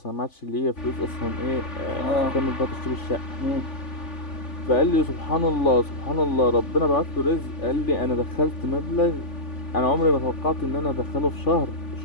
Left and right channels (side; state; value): right; late; 3.5 ms